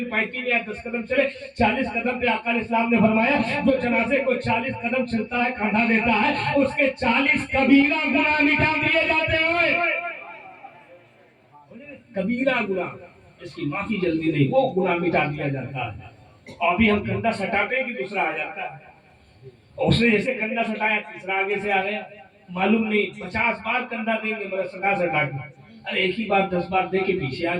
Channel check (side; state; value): both; identical; correlation 1.00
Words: پائتی میں آئے 10 قدم چلے. 40 قدم پہ آقا علیہ السلام نے فرمایا جو جنازے کو 40 قدم چلتا ہے, کاندھا دیتا ہے, اس کے 40 کبیرہ گناہ مٹا دیے جاتے ہیں. کبیرہ گناہ, اس کی معافی جلدی نہیں, وہ گناہ مٹا دیا جاتا ہے. اور ابھی ہم کندھا سٹاتے ہیں کہ دوسرا آ جاتا ہے. اس نے جیسے کندھا سٹایا, تیسرا آگے سے آ گیا, معلوم نہیں 50 بار کندھا دیں گے مگر سٹا کے. ارے ایک ہی بار 10 بار دے کے پیچھے آ